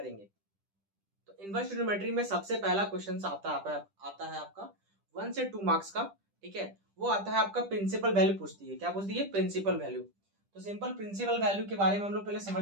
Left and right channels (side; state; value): left; late; 10 ms